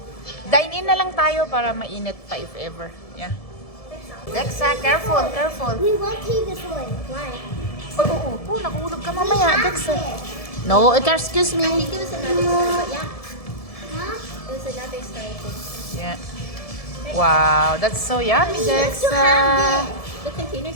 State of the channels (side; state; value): right; late; 1.7 ms